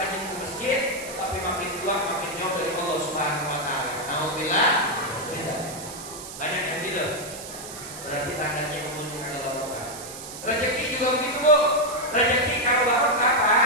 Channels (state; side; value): noise; right; hiss, 12 dB below the sound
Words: ke masjid, tapi makin tua makin jauh dari Allah Subhanahu wa Ta'ala. Alhamdulillah. Banyak yang gitu. Berarti tandanya umurnya nggak barokah. Rezeki juga begitu, Bu. Rezeki kalau barokah,